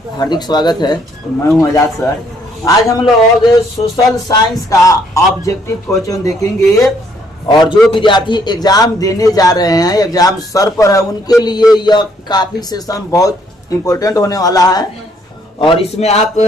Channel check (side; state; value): both; normal; correlation 0.68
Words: हार्दिक स्वागत है। मैं हूं आजाद सर। आज हम लोग सोशल साइंस का ऑब्जेक्टिव क्वेश्चन देखेंगे और जो विद्यार्थी एग्जाम देने जा रहे हैं, एग्जाम सर पर है, उनके लिए यह काफी सेशन बहुत इम्पोर्टेंट होने वाला है और इसमें आप